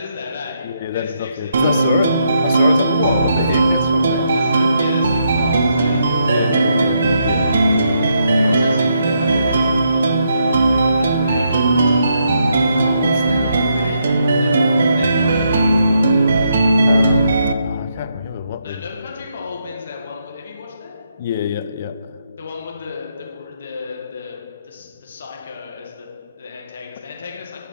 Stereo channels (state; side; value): inverted; both; correlation -0.78